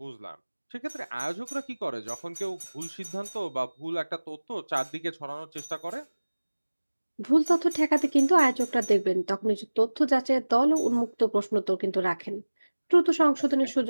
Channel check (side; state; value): both; inverted; correlation -1.00